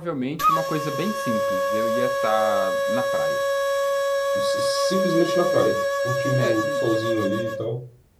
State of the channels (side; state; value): both; identical; correlation 1.00